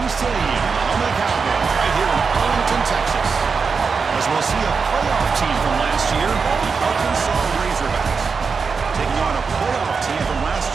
Stadium, the home of the Cowboys, right here in Arlington, Texas. As we'll see a playoff team from last year, the Arkansas Razorbacks, taking on a playoff team from last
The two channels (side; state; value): left; quieter; 5.2 dB